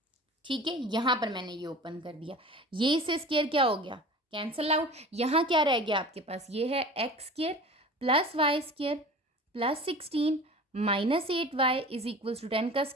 ठीक है, यहाँ पर मैंने ये ओपन कर दिया, ये इससे स्क्वायर क्या हो गया, कैंसल आउट। यहाँ क्या रह गया आपके पास, ये है x square plus y square plus 16 minus 8y is equals to 10 का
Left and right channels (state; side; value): normal; both; correlation 0.39